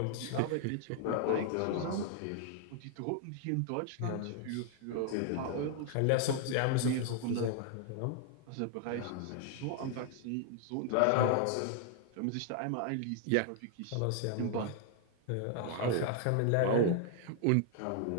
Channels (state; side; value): different; both; correlation 0.00